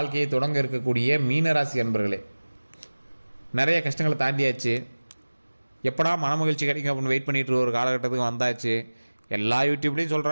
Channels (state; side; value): inverted; both; correlation -1.00